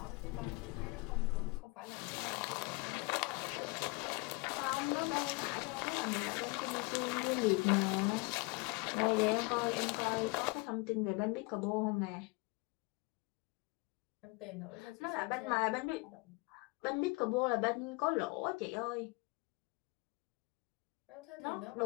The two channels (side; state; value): right; quieter; 27.4 dB